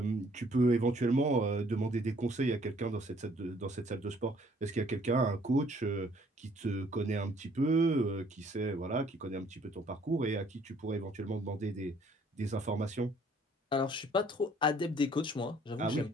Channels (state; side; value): normal; both; correlation 0.61